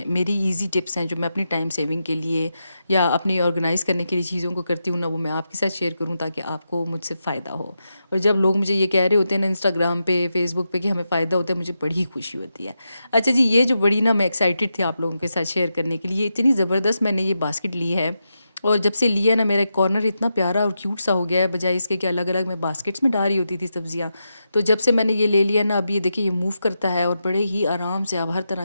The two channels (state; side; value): inverted; both; correlation -0.87